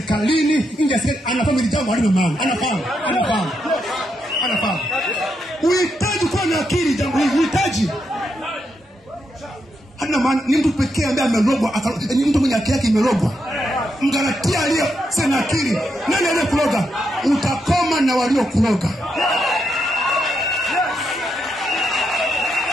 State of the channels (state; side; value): normal; both; correlation 0.82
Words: nje ya serikali, anafahamu jambo halina maana. Anafahamu. Uhitaji kuwa na akili jambo hili. Uhitaji. Hana maana ni mtu pekee ambaye amerogwa, ni mtu mwenye akili yake imerogwa. Mgalatia aliye sana akili. Nani aliyekuroga? Utakoma na waliokuroga.